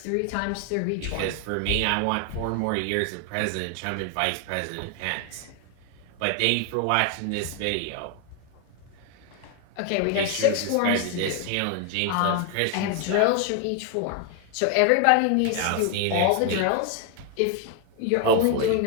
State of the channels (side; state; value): both; different; correlation 0.01